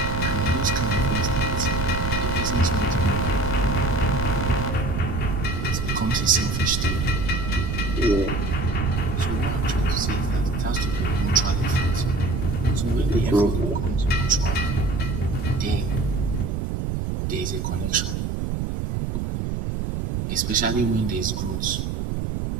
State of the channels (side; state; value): right; noise; rumble, 1 dB below the sound